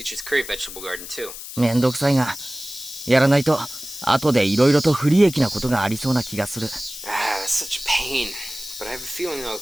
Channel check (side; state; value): left; noise; hiss, 11 dB below the sound